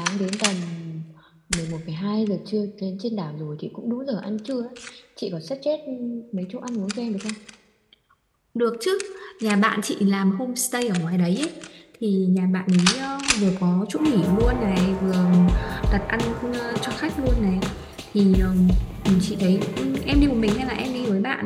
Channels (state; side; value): identical; both; correlation 1.00